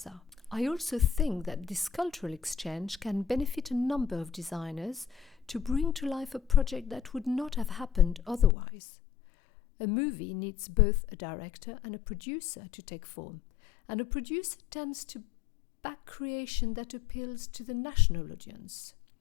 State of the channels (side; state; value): right; drops out; at 8.6 s